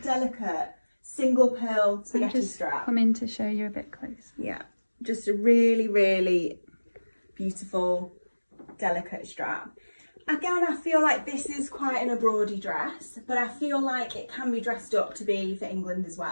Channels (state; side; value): inverted; both; correlation -1.00